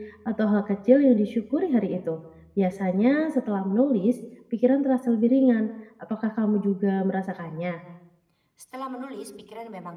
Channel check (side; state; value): both; identical; correlation 1.00